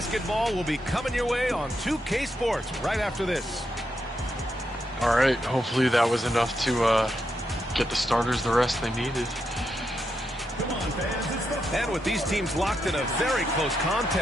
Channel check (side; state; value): both; normal; correlation 0.83